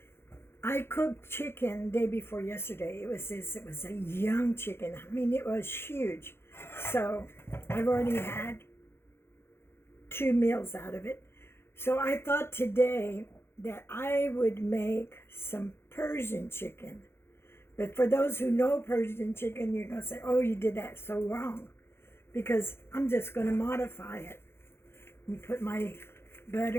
I cooked chicken day before yesterday. It was a young chicken. I mean, it was huge. So I've already had 2 meals out of it. So I thought today that I would make some Persian chicken. But for those who know Persian chicken, you're going to say, oh, you did that so wrong. Because I'm just going to modify it. And put my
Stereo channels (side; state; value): right; late; 0.12 ms